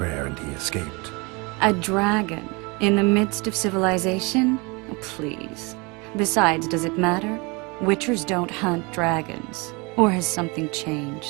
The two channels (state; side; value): quieter; left; 27.7 dB